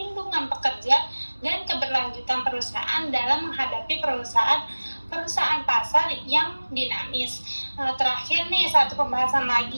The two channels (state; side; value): inverted; both; correlation -1.00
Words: pekerja dan keberlanjutan perusahaan dalam menghadapi perusahaan pasar yang dinamis. Terakhir nih, satu pembahasan